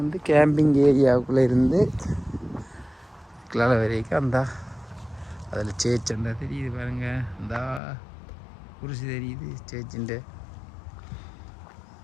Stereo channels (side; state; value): right; drops out; at 7.8 s